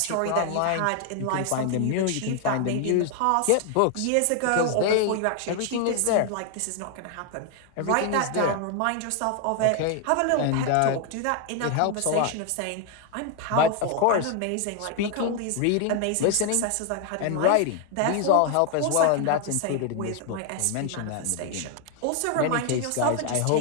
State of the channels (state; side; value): different; both; correlation 0.00